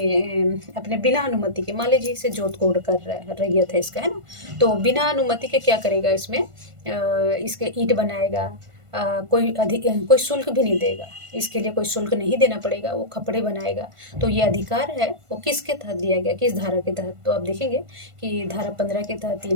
बिना अनुमति के, मान लीजिए इसे जोत कोड कर रहा है, रैयत है इसका, है ना, तो बिना अनुमति के क्या करेगा, इसमें इसके ईंट बनाएगा, कोई शुल्क भी नहीं देगा, इसके लिए कोई शुल्क नहीं देना पड़ेगा, वो खपड़े बनाएगा, तो ये अधिकार है वो किसके तहत दिया गया, किस धारा के तहत, तो आप देखेंगे कि धारा 15 के तहत ये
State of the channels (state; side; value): late; left; 1.5 ms